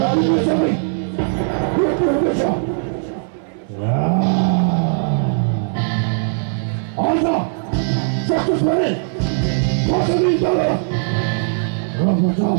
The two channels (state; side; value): silent; left; 63 dB below the other